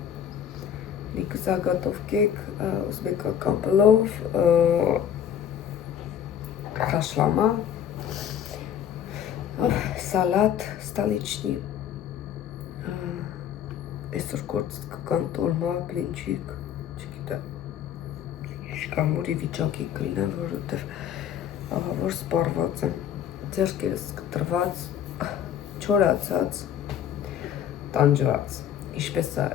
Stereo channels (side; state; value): right; quieter; 9.2 dB